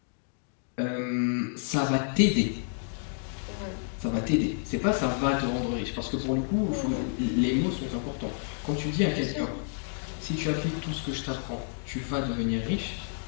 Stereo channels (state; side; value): silent; right; digital silence